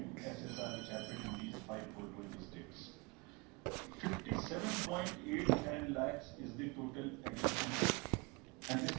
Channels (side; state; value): left; quieter; 28.0 dB